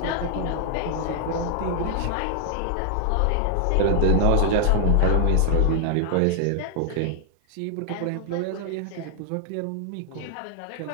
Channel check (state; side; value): different; both; correlation 0.00